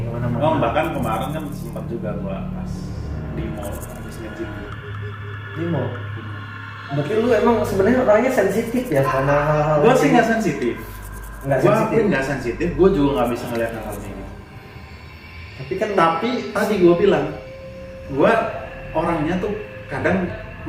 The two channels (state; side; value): identical; both; correlation 1.00